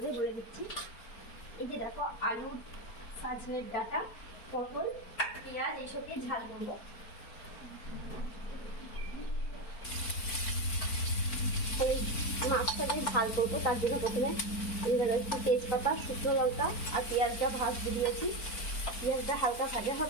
বলে দিচ্ছি। এই যে দেখো আলু, সজনের ডাঁটা, পটল, পেঁয়াজ এইসব দিয়ে ঝাল করবো। এই মাছটা দিয়ে ঝাল করবো, তার জন্য প্রথমে আমি একটু তেজপাতা, শুকনো লঙ্কা আর পেঁয়াজটা ভাজতে দিয়েছি। পেঁয়াজটা হালকা ভাজা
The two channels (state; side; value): late; right; 4.4 ms